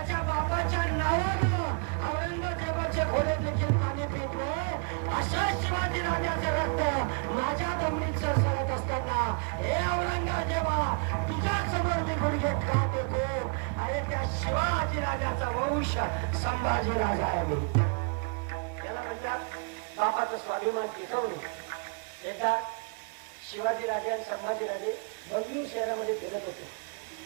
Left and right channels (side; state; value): left; quieter; 36.7 dB